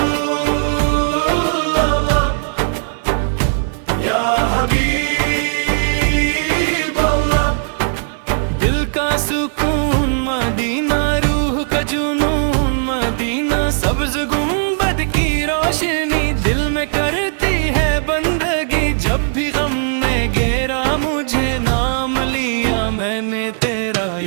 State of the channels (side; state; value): left; silent; digital silence